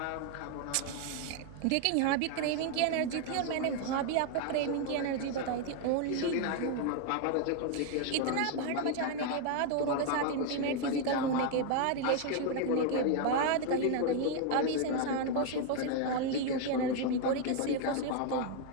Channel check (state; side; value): different; both; correlation 0.00